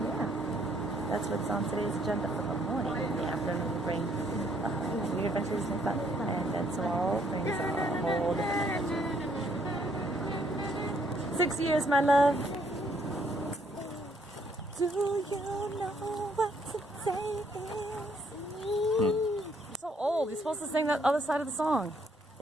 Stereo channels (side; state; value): both; normal; correlation 0.68